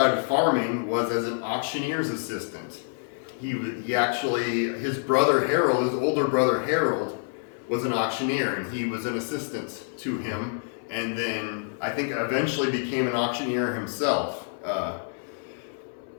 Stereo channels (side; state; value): right; silent; 60 dB below the other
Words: of farming was as an auctioneer's assistant. His brother Harold, his older brother Harold, was an auctioneer, and he was an assistant to him, and then I think eventually became an auctioneer himself.